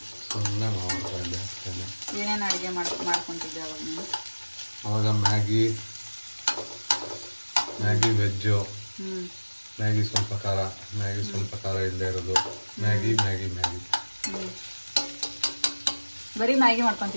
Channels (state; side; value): inverted; both; correlation -1.00